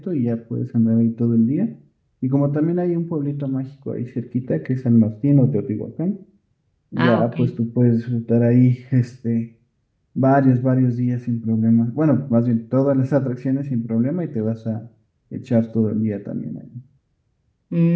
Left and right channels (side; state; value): both; identical; correlation 1.00